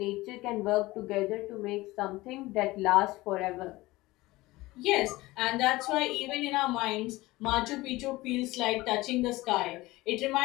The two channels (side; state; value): right; quieter; 19.6 dB